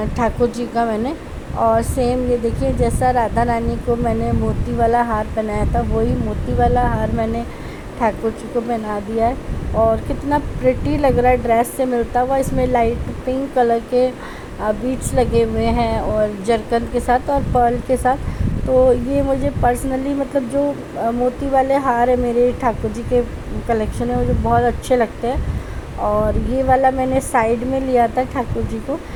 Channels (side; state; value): both; identical; correlation 1.00